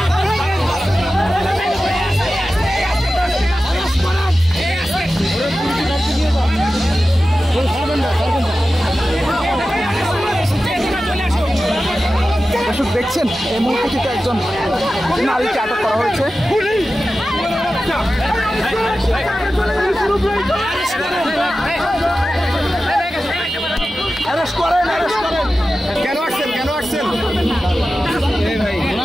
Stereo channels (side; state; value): both; normal; correlation 0.94